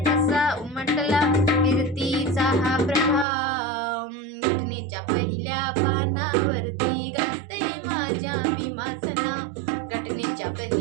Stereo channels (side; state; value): left; drops out; at 3.2 s